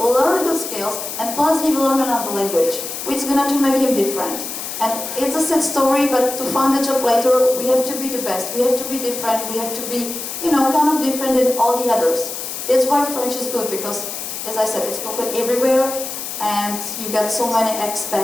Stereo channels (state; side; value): noise; left; hiss, 7 dB below the sound